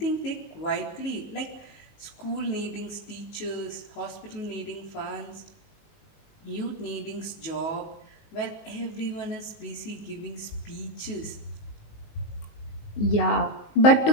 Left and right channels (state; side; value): late; right; 19 ms